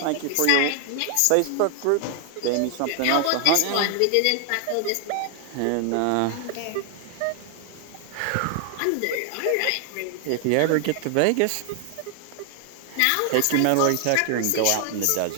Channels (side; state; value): both; different; correlation 0.00